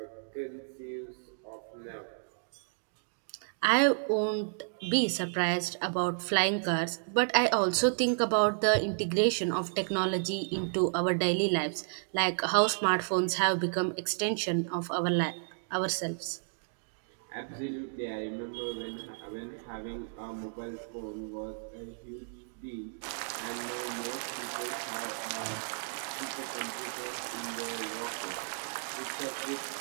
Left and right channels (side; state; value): left; silent; digital silence